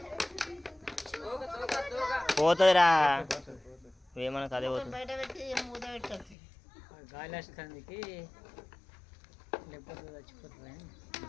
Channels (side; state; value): right; drops out; at 6.4 s